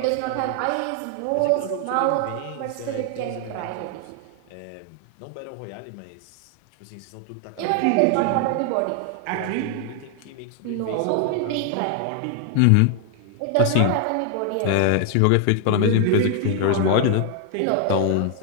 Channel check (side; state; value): both; different; correlation 0.00